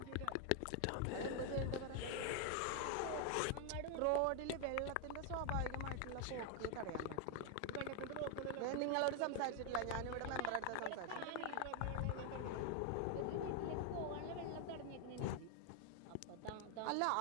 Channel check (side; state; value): both; different; correlation 0.01